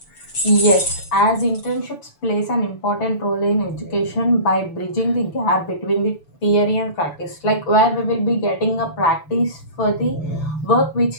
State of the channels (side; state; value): right; late; 6.9 ms